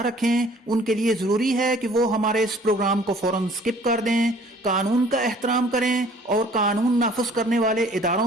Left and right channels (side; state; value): both; normal; correlation 0.54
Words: रखें। उनके लिए जरूरी है कि वो हमारे इस प्रोग्राम को फौरन स्किप कर दें, कानून का एहतराम करें और कानून नाफिज करने वाले